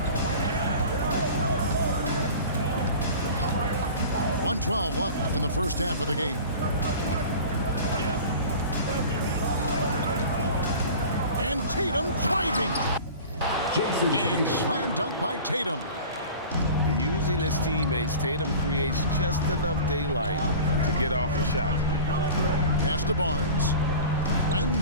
.112 left in the first half of the game. And Tatum driving. And slam dunk by Tatum. Using his teammates, Tatum creates just enough daylight to get off a shot. Pass to Barnes.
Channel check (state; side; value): inverted; both; correlation -0.38